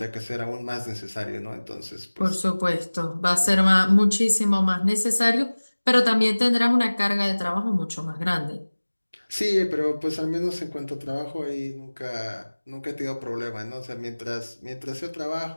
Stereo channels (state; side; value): inverted; both; correlation -1.00